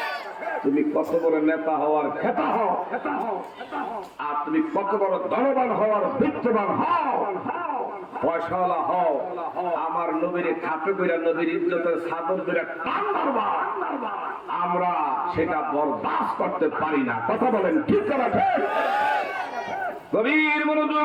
তুমি কত বড় নেতা হওয়ার খেতা হও, আর তুমি কত বড় ধনবান হওয়ার বিত্তবান হও, পয়সাওয়ালা হও, আমার নবীর খাপে কইরা নবীর ইজ্জতের চাদর ধরে টান মারবা, আমরা সেটা বরদাস্ত করতে পারি না। কথা বলেন ঠিক না? ঠিক। গভীর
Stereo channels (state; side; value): identical; both; correlation 1.00